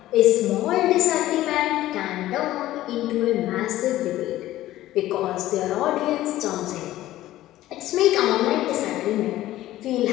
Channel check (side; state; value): right; quieter; 15.0 dB